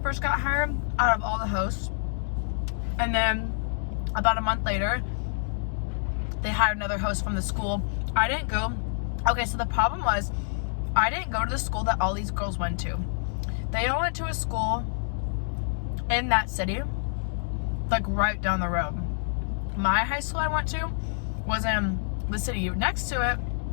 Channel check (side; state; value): right; silent; digital silence